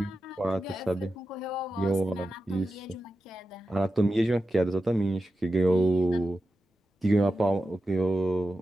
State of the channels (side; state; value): both; normal; correlation 0.91